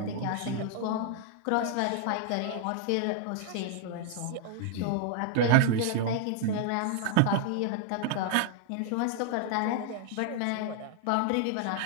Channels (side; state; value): both; different; correlation 0.00